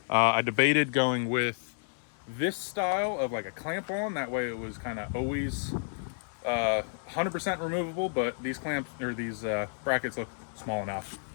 I debated going with this style of like a clamp on. That way it was kind of always 100% removable, but these clamps or these brackets look small enough.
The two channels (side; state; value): right; silent; 57 dB below the other